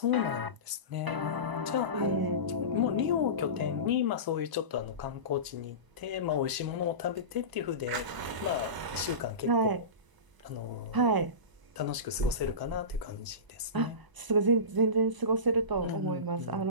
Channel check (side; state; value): left; late; 1.0 ms